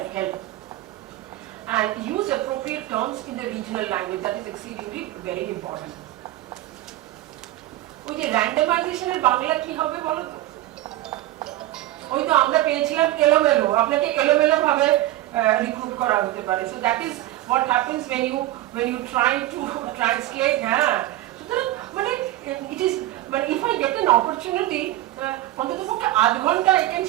help. And use appropriate terms in the regional language. That is exceedingly very important. ওই যে র্যান্ডমাইজেশনের বাংলা কি হবে বলো তো? ওই তো আমরা পেয়েছিলাম এলোমেলো, আপনাকে এলোমেলো ভাবে রিক্রুট করা হতে পারে। So that is what happens when you try to translate. হ্যাঁ, সুতরাং মানে it is, but if I get an opportunity, অন্ততপক্ষে আধ ঘন্টা I can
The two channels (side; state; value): left; quieter; 15.6 dB